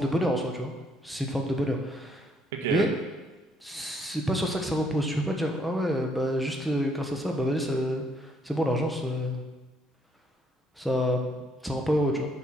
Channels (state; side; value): normal; both; correlation 0.69